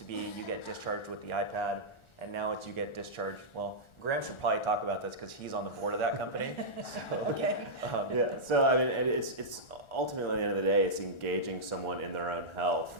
be you get discharged with the iPad, and now it's you get discharged. Well, Graham should probably talk about this because he's on the board of that company. So, Okay. Yeah, so I mean, it's ultimately at the end of the day, it's engaging someone in their own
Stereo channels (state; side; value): late; right; 1.4 ms